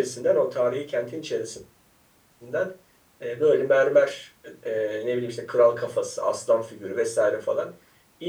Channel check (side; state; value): both; identical; correlation 1.00